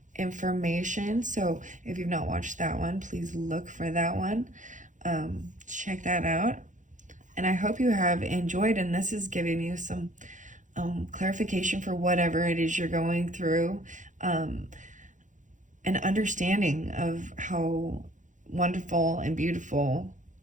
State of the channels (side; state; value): left; late; 0.36 ms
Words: information. So if you've not watched that one, please look for that one. Check that out. And I hope you have enjoyed, and this is giving you some clarification for whatever it is you're going through, an understanding of how wonderful and beautiful